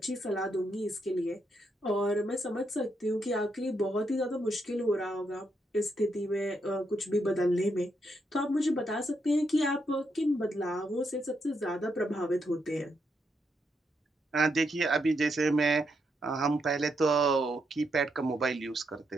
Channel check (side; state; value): both; normal; correlation 0.80